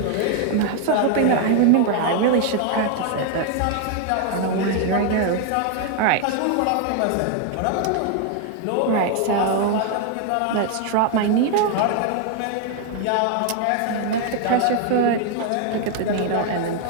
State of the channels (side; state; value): both; different; correlation 0.00